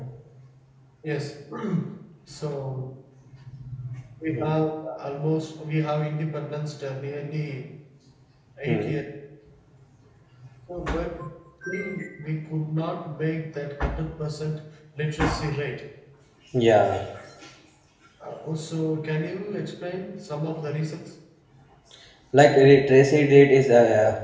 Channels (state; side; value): identical; both; correlation 1.00